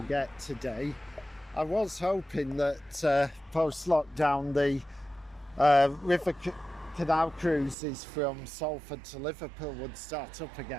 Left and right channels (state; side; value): drops out; left; at 7.8 s